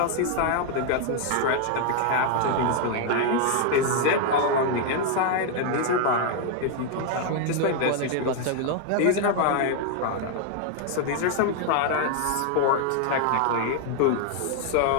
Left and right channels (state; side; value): different; both; correlation 0.00